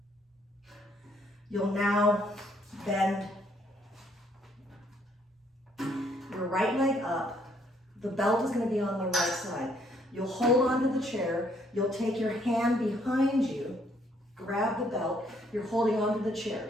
You'll now bend your right leg up. The belt is going to be on the right side. You'll hold onto the chair. You'll take your hand behind you, grab the belt. You're holding onto the chair.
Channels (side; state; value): both; normal; correlation 0.68